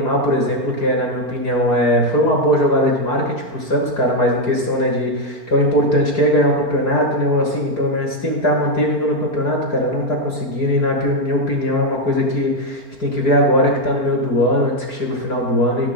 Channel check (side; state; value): right; late; 4.4 ms